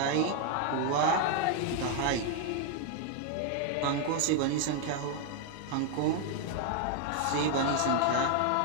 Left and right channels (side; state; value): both; different; correlation 0.00